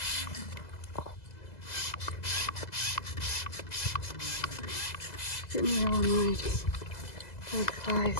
Getting real annoyed. Bad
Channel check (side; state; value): right; late; 2.0 ms